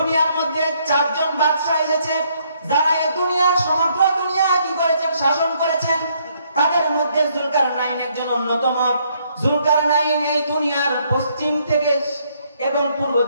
মধ্যে চারজন বাদশা এসেছে, যারা এই দুনিয়ার সমগ্র দুনিয়া কি করেছেন, শাসন করেছেন। তাদের মধ্যে যুলকারনাইন একজন অন্যতম। যুলকারনাইন এই দুনিয়ার পশ্চিম থেকে এবং পূর্ব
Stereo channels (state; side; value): inverted; both; correlation -0.70